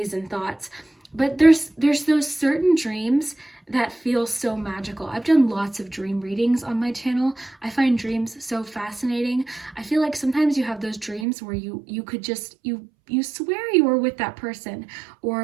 and thoughts. But there's those certain dreams that feel so magical. I've done lots of dream readings on my channel. I find dreams so fascinating. I feel like sometimes you have those dreams where you could just, you swear you were with that person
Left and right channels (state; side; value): drops out; left; at 11.2 s